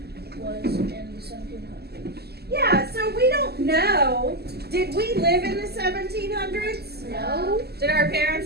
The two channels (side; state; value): left; late; 0.46 ms